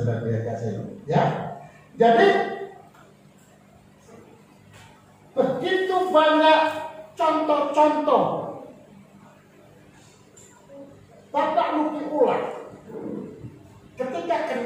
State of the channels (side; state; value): both; identical; correlation 1.00